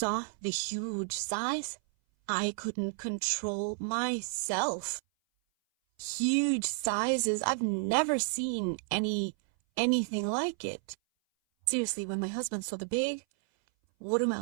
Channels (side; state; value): left; silent; 57 dB below the other